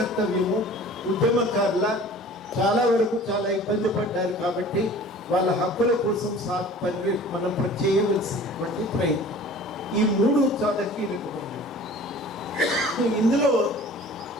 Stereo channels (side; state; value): both; normal; correlation 0.45